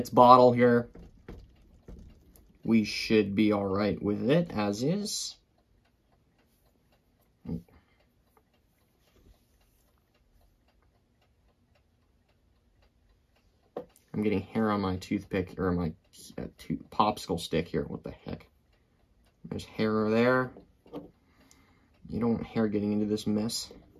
bottle here. We should be all right with it as is. I'm getting hair on my toothpick, or my popsicle stick here. What the heck? There's hair there. You don't want hair getting into this mess.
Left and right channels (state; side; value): identical; both; correlation 1.00